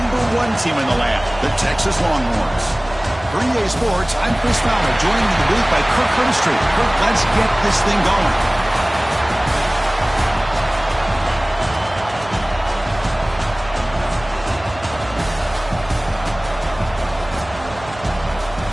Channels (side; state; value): right; noise; hum, 17 dB below the sound